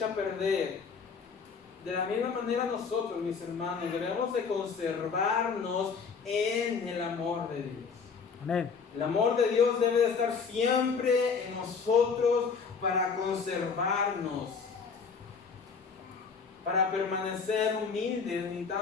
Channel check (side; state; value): right; quieter; 5.5 dB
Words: a perder. De la misma manera nosotros, mis hermanos, debemos de conservarnos en el amor de Dios. Amén. El amor de Dios debe de estar siempre en nosotros para conservarnos. Para permanecer humildes